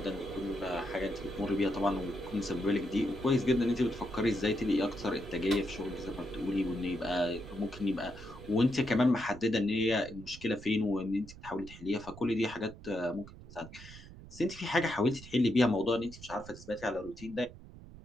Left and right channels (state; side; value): noise; right; rumble, 16 dB below the sound